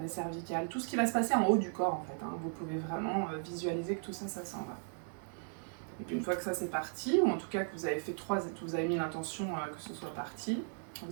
cervicales, tout ce qui va se passer en haut du corps en fait. Hein. Vous pouvez vraiment visualiser que tout ça, ça s'en va. Et puis une fois que ça c'est parti, ou en tout cas que vous avez fait vous avez mis l'intention que ce soit parti,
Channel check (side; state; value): left; silent; 53 dB below the other